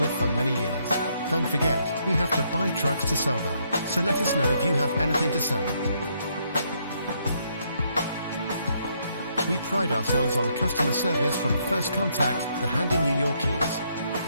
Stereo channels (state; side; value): inverted; both; correlation -0.73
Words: with for many years. Don't forget, we have to buy trucks to sell them, so let us know if you have anything to sell. We pride ourselves on customer service from first contact to handing you your keys.